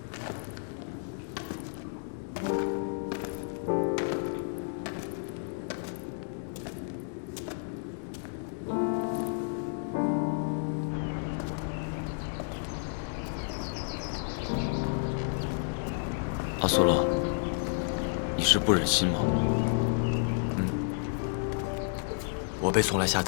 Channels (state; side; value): silent; right; digital silence